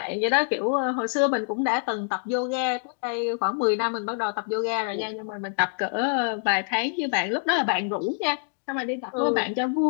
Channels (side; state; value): right; silent; 61 dB below the other